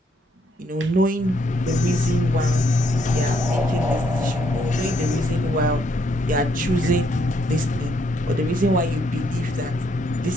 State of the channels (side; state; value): both; normal; correlation 0.72